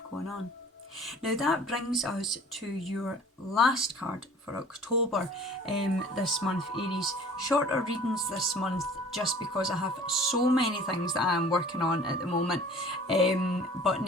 going on. Now that brings us to your last card for October this month, Aries. Shorter readings this month just because I have so many things that I am working on at the moment. But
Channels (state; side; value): normal; both; correlation 0.48